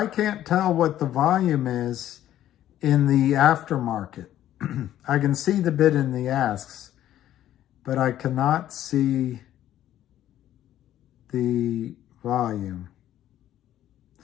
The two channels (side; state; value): right; quieter; 12.3 dB